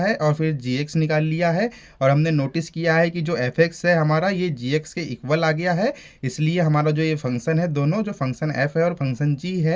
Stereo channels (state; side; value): identical; both; correlation 1.00